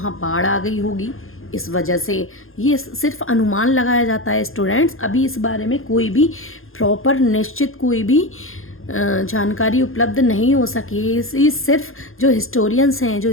बाढ़ आ गई होगी, इस वजह से, ये सिर्फ अनुमान लगाया जाता है स्टूडेंट्स, अभी इस बारे में कोई भी प्रॉपर निश्चित कोई भी जानकारी उपलब्ध नहीं हो सकी। इस सिर्फ जो हिस्टोरियंस हैं, जो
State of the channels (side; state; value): right; late; 0.60 ms